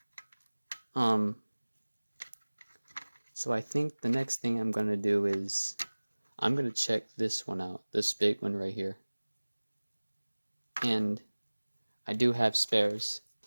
So I think the next thing I'm going to do is I'm going to check this one out, this big one right here. And I do have spares,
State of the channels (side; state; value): both; inverted; correlation -1.00